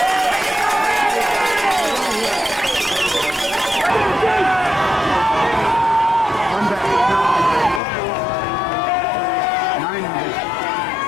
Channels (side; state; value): right; drops out; at 7.8 s